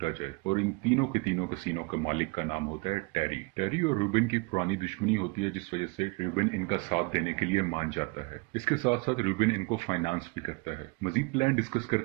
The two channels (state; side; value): quieter; left; 28.3 dB